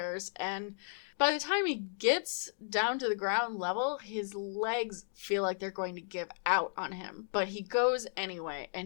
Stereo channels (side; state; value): right; silent; digital silence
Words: and by the time he gets down to the ground level, his legs feel like they're going to give out on him. But he goes anyway,